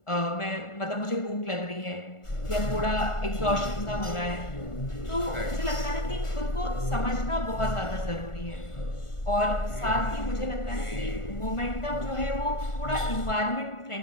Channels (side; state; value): right; late; 1.4 ms